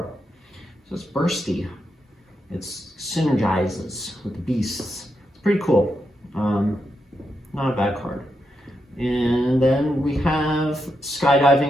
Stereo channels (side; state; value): both; normal; correlation 0.84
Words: So it's bursty. It synergizes with the beasts. pretty cool. Not a bad card. And then we have